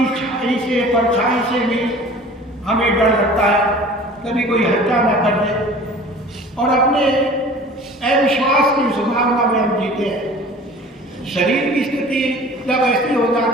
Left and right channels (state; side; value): normal; both; correlation 0.44